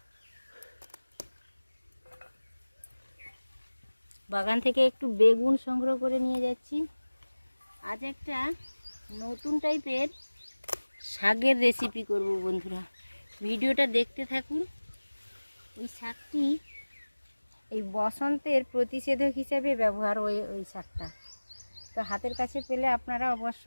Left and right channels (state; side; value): inverted; both; correlation -1.00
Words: বাগান থেকে একটু বেগুন সংগ্রহ করে নিয়ে যাচ্ছি। আজ একটা নতুন টাইপের শাকের রেসিপি করব বন্ধুরা, ভিডিওটা দেখতে থাকুন। এই শাকটি এই বসন্তের প্রতিষেধক হিসেবে ব্যবহার হয় ওই শাকটা, তো হাতের কাছে পেলে আপনারা অবশ্য